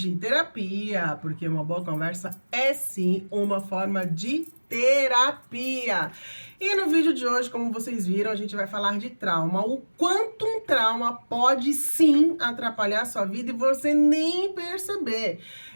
terapia, porque uma boa conversa é sim uma forma de terapia. E no vídeo de hoje, como vocês viram, a gente vai falar de trauma, o quanto um trauma pode sim atrapalhar a sua vida e você nem perceber.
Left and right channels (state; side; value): inverted; both; correlation -1.00